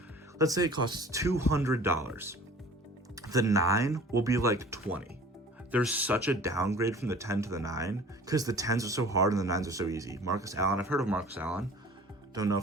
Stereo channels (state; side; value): normal; both; correlation 0.46